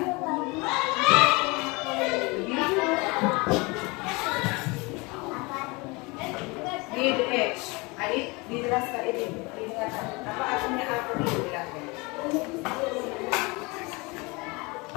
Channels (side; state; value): right; quieter; 26.3 dB